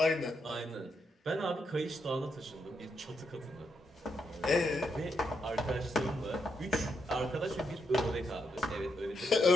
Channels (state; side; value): normal; both; correlation 0.81